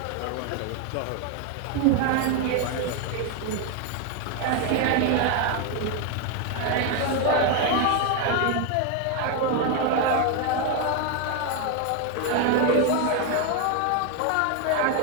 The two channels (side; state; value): both; different; correlation 0.01